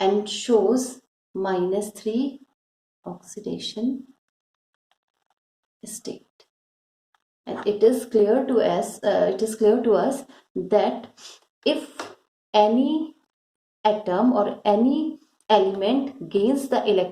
oxidation state. And it is clear to us that if any atom or any element gains the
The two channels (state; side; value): identical; both; correlation 1.00